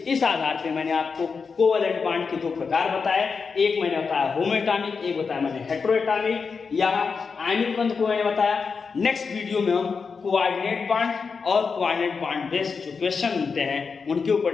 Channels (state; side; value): quieter; right; 5.3 dB